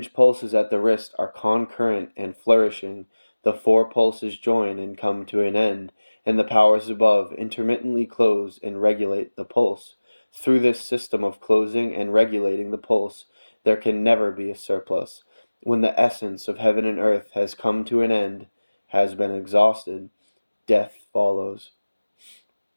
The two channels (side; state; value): both; inverted; correlation -1.00